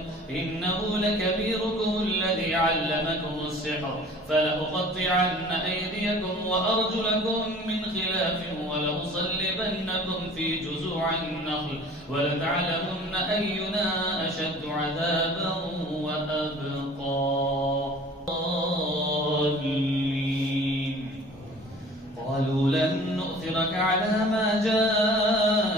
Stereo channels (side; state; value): both; normal; correlation 0.46